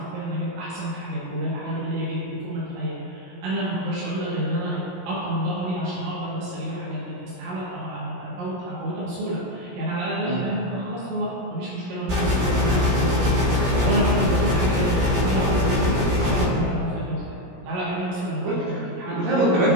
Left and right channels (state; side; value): late; left; 17 ms